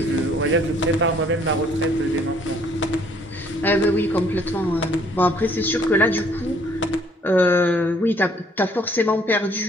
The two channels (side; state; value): both; normal; correlation 0.62